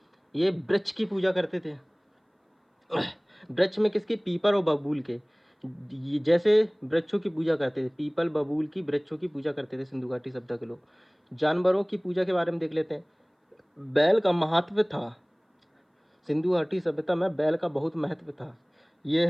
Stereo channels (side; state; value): both; identical; correlation 1.00